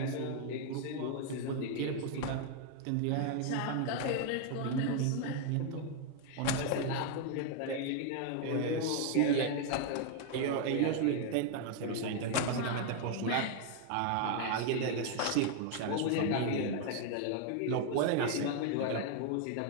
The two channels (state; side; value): different; both; correlation 0.00